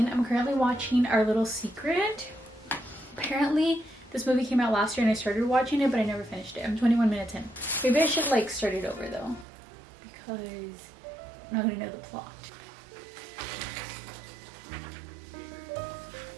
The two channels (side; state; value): left; drops out; at 9.5 s